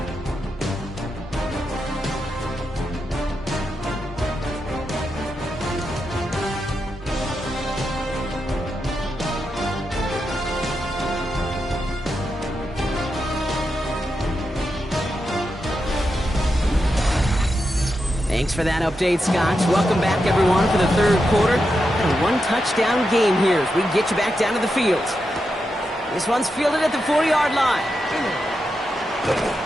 Thanks for that update, Scott. Welcome back, everyone, for the third quarter. And a one-touchdown game here as we get you back down to the field. This one's fielded at the 40-yard line.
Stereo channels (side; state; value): both; normal; correlation 0.87